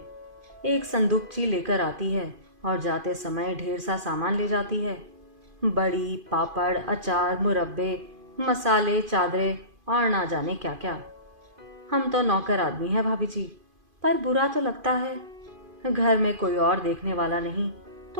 एक संदूकची लेकर आती है और जाते समय ढेर सा सामान ले जाती है। बड़ी, पापड़, अचार, मुरब्बे, मसाले, चादरें और ना जाने क्या क्या। हम तो नौकर आदमी है भाभी जी, पर बुरा तो लगता है। घर में कोई और देखने वाला नहीं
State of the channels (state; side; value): late; left; 2.5 ms